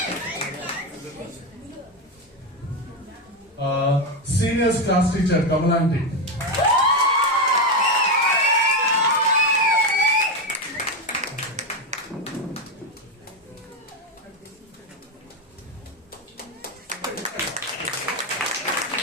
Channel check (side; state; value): both; normal; correlation 0.10